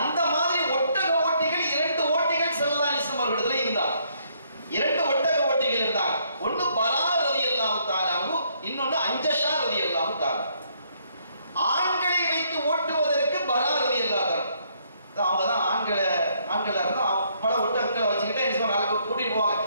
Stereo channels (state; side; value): inverted; both; correlation -0.69